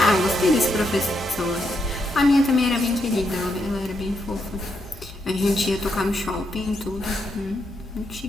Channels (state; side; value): normal; both; correlation 0.80